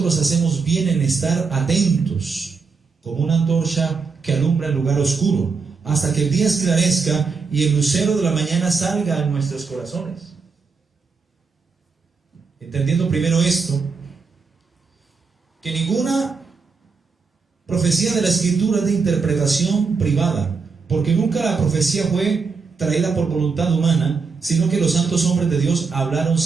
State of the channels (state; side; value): quieter; left; 4.9 dB